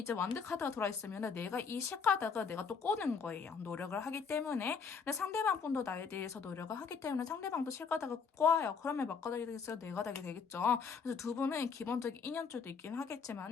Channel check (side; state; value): right; quieter; 5.7 dB